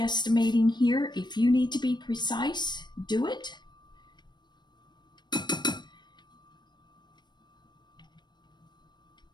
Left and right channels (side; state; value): right; late; 0.21 ms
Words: here. If you need to be precise, do it.